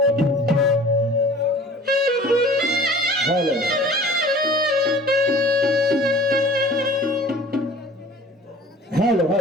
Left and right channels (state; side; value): normal; both; correlation 0.46